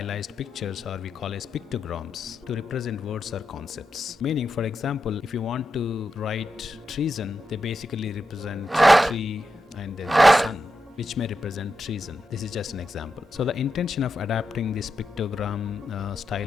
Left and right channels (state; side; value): normal; both; correlation 0.87